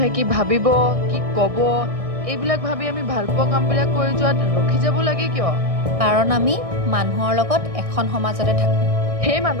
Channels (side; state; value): left; late; 1.6 ms